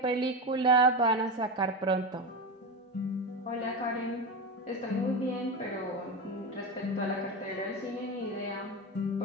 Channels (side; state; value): both; normal; correlation 0.19